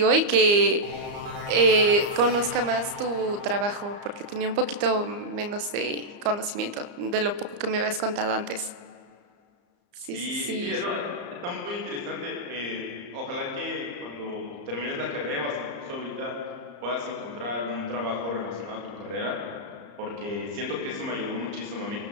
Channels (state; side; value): late; left; 34 ms